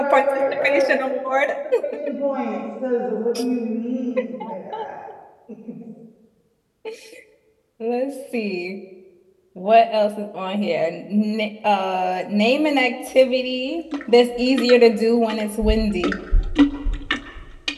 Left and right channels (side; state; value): both; identical; correlation 1.00